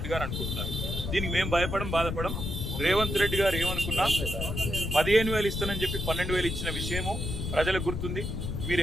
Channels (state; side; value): noise; left; rumble, 3 dB below the sound